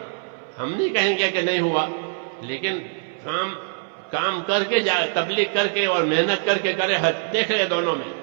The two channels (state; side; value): silent; left; 61 dB below the other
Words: ہم نہیں کہیں گے کہ نہیں ہوا، لیکن کام کر کے تبلیغ کر کے اور محنت کر کے کرے حج. دیکھ لے دونوں میں